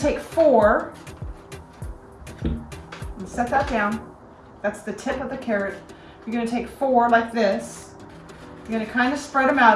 take 4 and set that down. That's the tip of the carrot. You're going to take 4 like this. You're going to kind of spread them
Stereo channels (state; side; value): identical; both; correlation 1.00